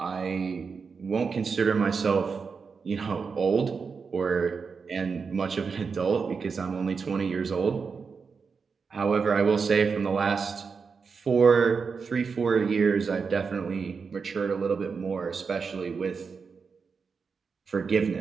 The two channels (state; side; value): quieter; left; 5.3 dB